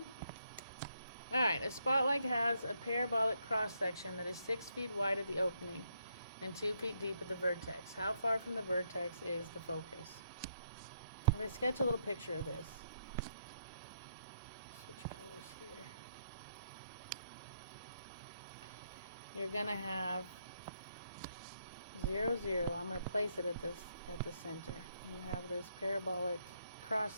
Alright, a spotlight has a parabolic cross-section that is 6 feet wide at the opening and 2 feet deep at the vertex. How far from the vertex is the focus? I'm going to sketch a little picture of this. Switch colors here. You're going to have 0, 0. I'm going to place it at the center. You have this parabolic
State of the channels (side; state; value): both; inverted; correlation -0.76